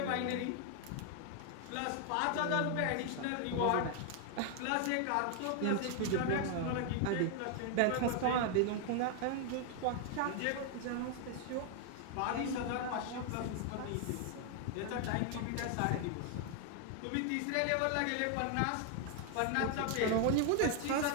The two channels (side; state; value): both; different; correlation 0.00